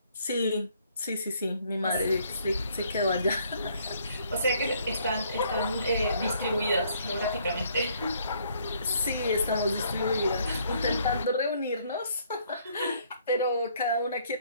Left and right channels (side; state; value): both; inverted; correlation -0.65